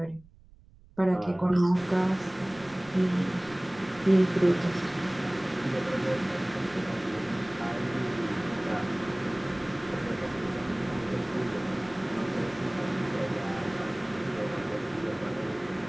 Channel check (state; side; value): noise; right; rumble, 24 dB below the sound